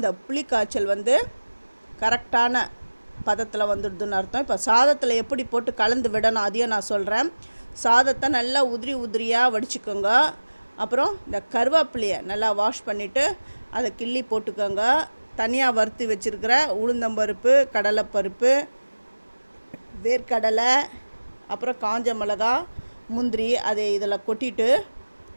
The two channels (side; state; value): both; inverted; correlation -1.00